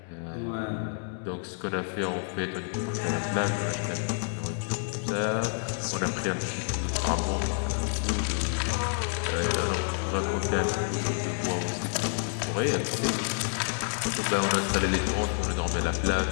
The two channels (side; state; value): right; silent; 57 dB below the other